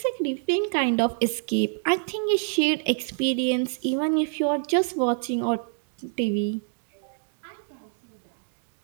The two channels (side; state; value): left; silent; digital silence